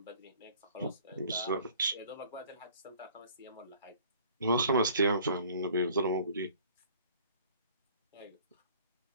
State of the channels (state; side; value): inverted; both; correlation -0.54